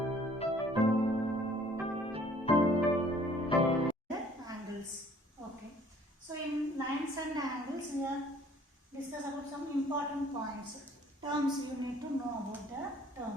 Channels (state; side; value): normal; both; correlation 0.56